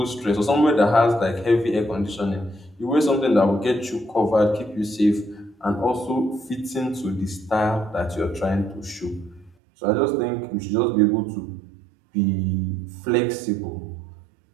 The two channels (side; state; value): left; drops out; at 9.5 s